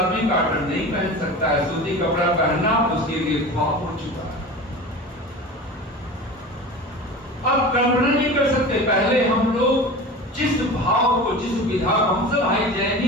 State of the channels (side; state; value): both; normal; correlation 0.33